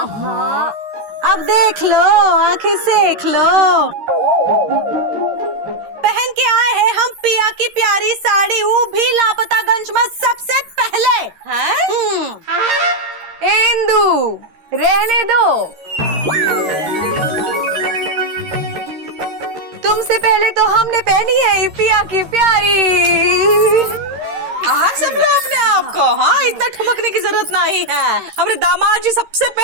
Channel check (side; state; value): left; late; 13 ms